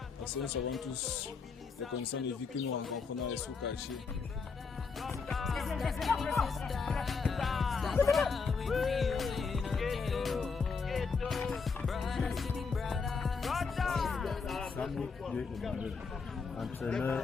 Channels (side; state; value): right; quieter; 5.0 dB